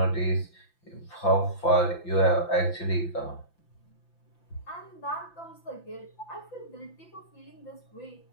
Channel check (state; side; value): late; right; 5.9 ms